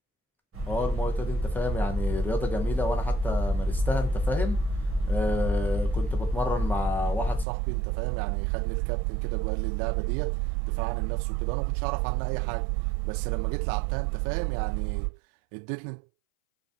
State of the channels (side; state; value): left; drops out; at 7.5 s